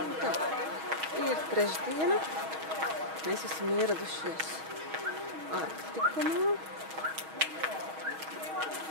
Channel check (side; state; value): left; late; 6.3 ms